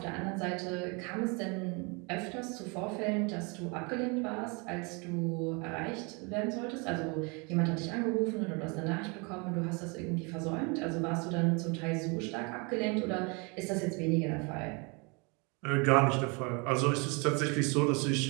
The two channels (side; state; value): left; quieter; 31.0 dB